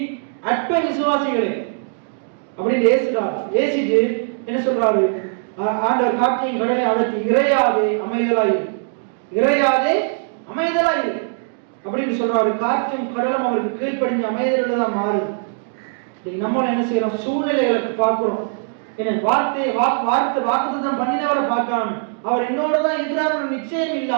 அற்ப விசுவாசிகளே அப்படின்னு ஏசுறார். ஏசிட்டு என்ன சொல்றாரு? ஆண்டவர் காற்றையும் கடலையும் அதட்டி, இறையாதே அமைதலாயிரு, இறையாதே அமைதலாயிரு அப்படின்னு சொல்றாரு. காற்றும் கடலும் அவருக்கு கீழ்ப்படிஞ்ச அமைதல்தான் மாறுது. நம்மளும் என்ன செய்யறோம்? சூழ்நிலைகளுக்கு பார்க்கிறோம். என்ன வாக்குத்தத்தம் பண்ணினவரை பார்க்காம, அவர் என்னோட தான் இருக்கிறார் நிச்சயம்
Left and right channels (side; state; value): left; silent; digital silence